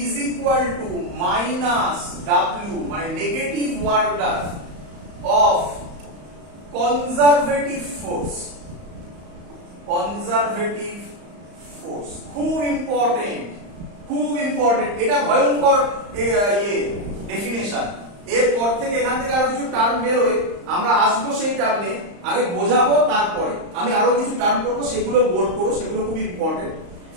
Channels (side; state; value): left; late; 35 ms